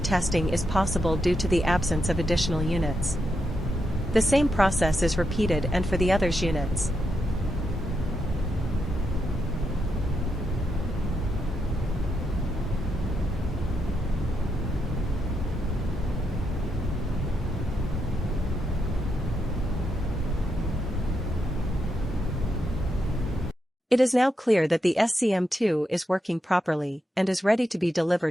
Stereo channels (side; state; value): both; normal; correlation 0.82